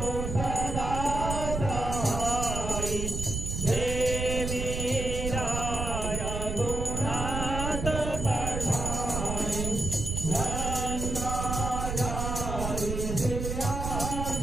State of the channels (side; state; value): right; noise; rumble, 3 dB below the sound